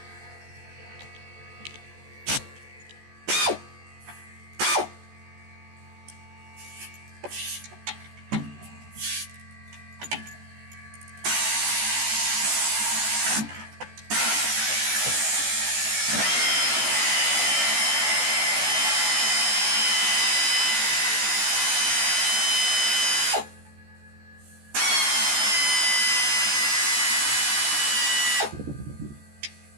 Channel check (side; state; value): left; late; 14 ms